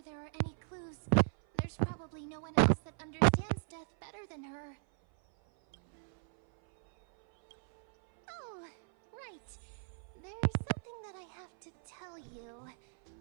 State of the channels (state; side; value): silent; left; 53 dB below the other